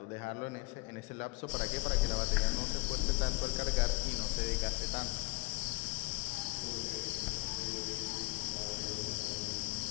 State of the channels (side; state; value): right; quieter; 26.6 dB